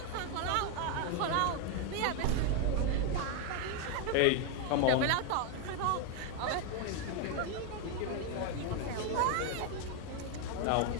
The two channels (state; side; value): different; both; correlation 0.01